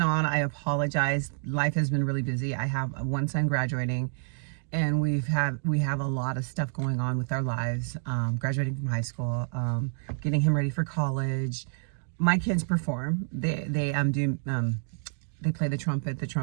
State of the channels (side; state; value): left; silent; digital silence